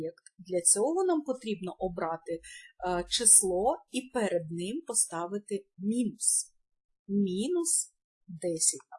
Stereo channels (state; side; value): identical; both; correlation 1.00